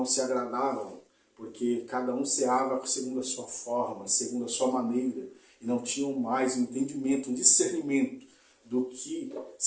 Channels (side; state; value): both; identical; correlation 1.00